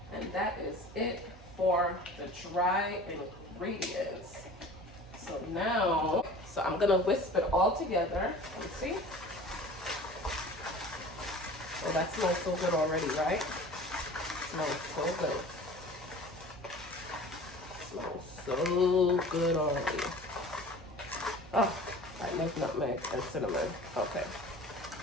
And that is it for the dry ingredients. So now, so I'm gonna whisk it all together. You see? Oh, that smells so good already, right? Smells so good. Smells so good already. Oh, I love nutmeg and cinnamon. Okay.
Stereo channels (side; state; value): right; noise; hum, 21 dB below the sound